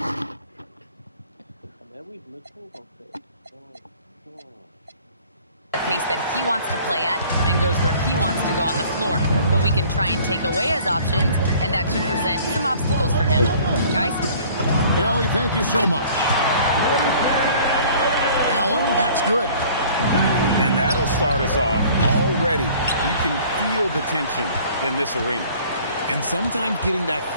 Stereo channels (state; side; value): inverted; both; correlation -0.51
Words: the pace that he wants to play at and goes where he wants to go on the floor. But we can try and take away his options, and that should present some obstacles for him. Guys? Allie, thank you so much. Allen, that's good. And that'll start us off already. You can feel the tension in this arena. And sometimes getting that